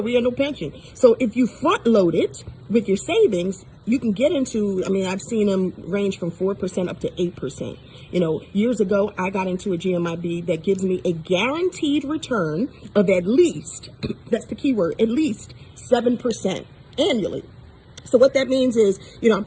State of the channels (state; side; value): identical; both; correlation 1.00